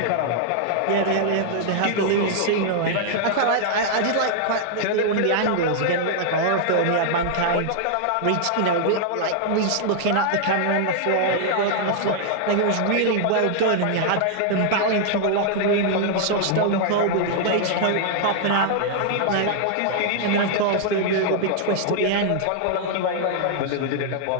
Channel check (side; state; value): both; different; correlation -0.01